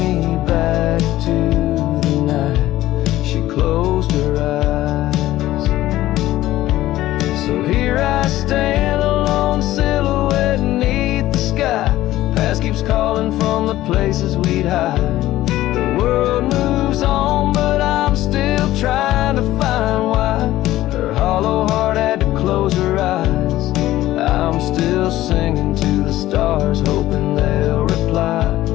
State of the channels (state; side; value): quieter; right; 15.3 dB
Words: back to the night she closed her eyes. So here I stand, a lone silhouette beneath the sky. Past keeps calling from the places we'd hide. The world moves on, but I'm still trying to find why her hollow heart had to close her eyes. I'm still singing to the stars, hoping they'll reply,